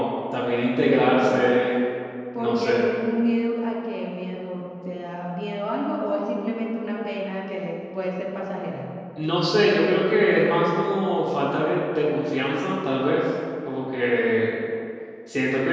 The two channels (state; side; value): identical; both; correlation 1.00